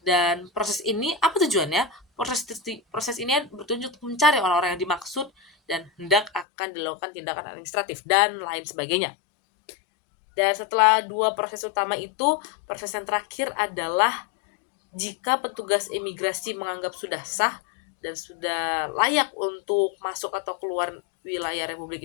Dan proses ini apa tujuannya? Proses ini bertujuan untuk mencari orang-orang yang dimaksud dan hendak akan dilakukan tindakan administratif dan lain sebagainya. Dan setelah 2 proses utama itu, proses yang terakhir adalah jika petugas imigrasi menganggap sudah sah dan sudah layak untuk masuk atau keluar wilayah Republik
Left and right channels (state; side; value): drops out; right; at 6.5 s